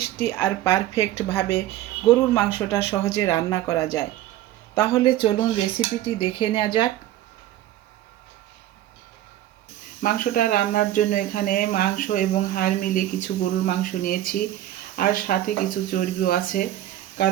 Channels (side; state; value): left; quieter; 13.5 dB